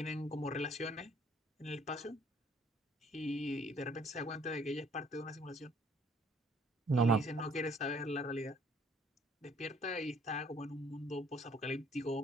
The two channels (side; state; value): both; normal; correlation 0.60